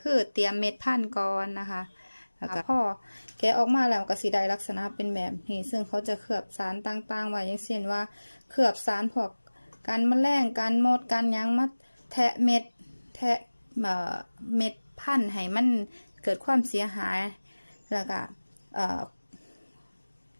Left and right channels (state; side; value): inverted; both; correlation -1.00